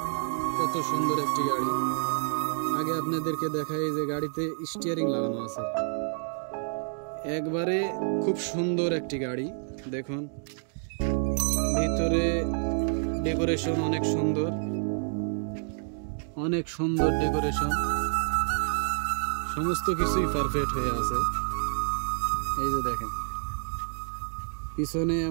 কত সুন্দর একটি গাড়ি। আগে আপনাদেরকে দেখাই যে গাড়িতে স্টিয়ারিং লাগানো আছে, একবারে খুব সুন্দর একটি গাড়ি। দেখুন ভিতরে ডেকোরেশন অনেক সুন্দর, অনেক সুন্দর ডেকোরেশন, সমস্ত কিছুই পারফেক্ট হয়ে আছে। এই যে দেখেন পিছনে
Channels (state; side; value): silent; left; 59 dB below the other